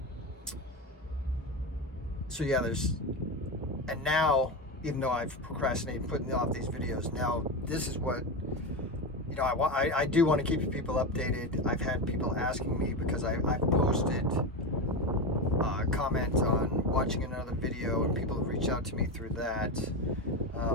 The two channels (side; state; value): both; normal; correlation 0.17